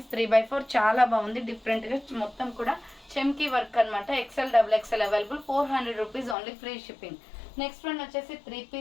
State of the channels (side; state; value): right; drops out; at 6.4 s